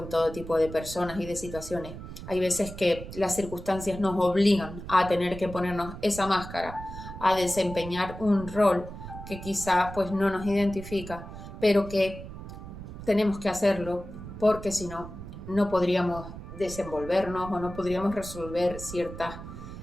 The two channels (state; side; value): noise; right; rumble, 11 dB below the sound